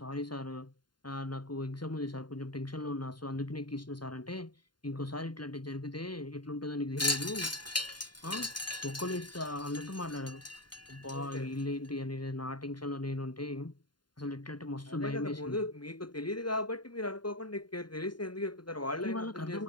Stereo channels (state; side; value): late; right; 0.71 ms